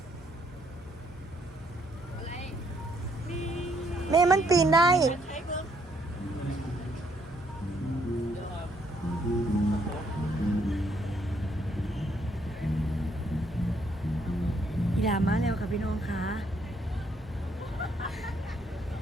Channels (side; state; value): both; normal; correlation 0.70